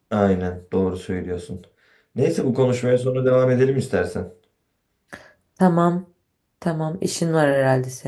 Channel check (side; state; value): both; identical; correlation 1.00